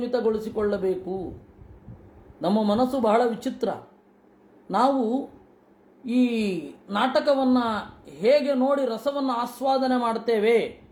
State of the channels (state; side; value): identical; both; correlation 1.00